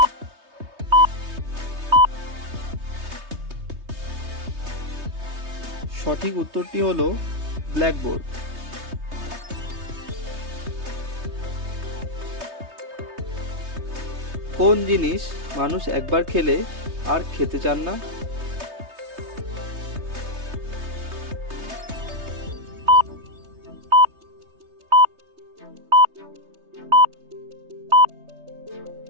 সঠিক উত্তরটি হলো ব্ল্যাকবোর্ড। কোন জিনিস মানুষ একবার খেলে আর খেতে চান না?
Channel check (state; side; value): late; left; 3.2 ms